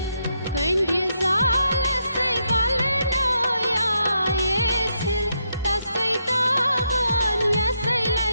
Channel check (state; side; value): inverted; both; correlation -0.80